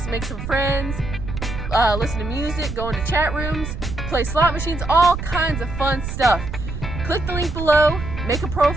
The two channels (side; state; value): right; noise; rumble, 7 dB below the sound